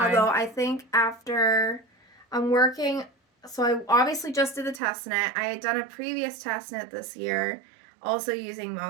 I think after I'm working, so I obviously just did the test knit. I had done a previous test knit this year, also using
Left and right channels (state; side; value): drops out; left; at 4.8 s